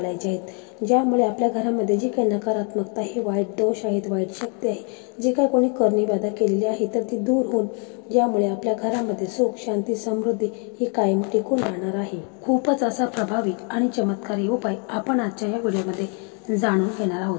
आहेत, ज्यामुळे आपल्या घरामध्ये जी काही नकारात्मकता आहे, वाईट दोष आहेत, वाईट शक्ती आहे, जे काही कोणी करणी-बाधा केलेली आहे तर ती दूर होऊन ज्यामुळे आपल्या घरामध्ये सुख शांती समृद्धी ही कायम टिकून राहणार आहे। खूपच असा प्रभावी आणि चमत्कारी उपाय आपण आजच्या या व्हिडिओमध्ये जाणून घेणार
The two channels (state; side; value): quieter; right; 38.3 dB